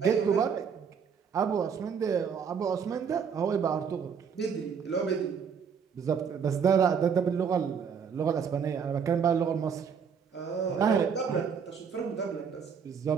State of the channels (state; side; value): quieter; left; 6.7 dB